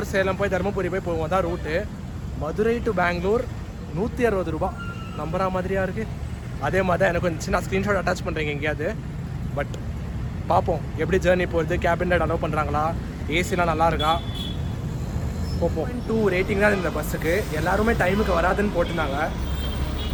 சேலம் போய் தருமபுரி போய் போவோம் தான் ரூட்டு. மதுரை டு பெங்களூர் 160 ரூபா. நம்புற மாதிரியா இருக்குது. அதே மாதிரி தான் எனக்கு வந்துச்சு. நான் ஸ்க்ரீன்ஷாட் அட்டாச் பண்ணுறேங்க எங்கேயாவது. பட் பார்ப்போம் எப்படி ஜேர்னி போகிறது. கேபின் ரைட் அலோவ் பண்ணுறாங்களா, ஏசிலாம் நல்லா இருக்கா, போப்போம். 2 ரேட்டிங் தான் இந்த பஸ்ஸுக்கு. எல்லாருமே டைமுக்கு வராதுன்னு போட்டிருந்தாங்க.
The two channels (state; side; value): identical; both; correlation 1.00